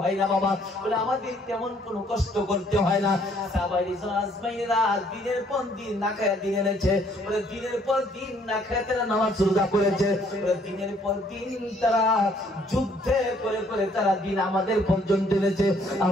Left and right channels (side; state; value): both; normal; correlation 0.64